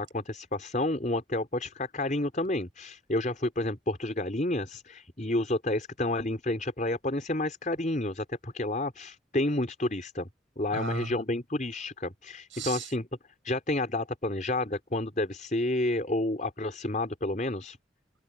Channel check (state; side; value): normal; both; correlation 0.43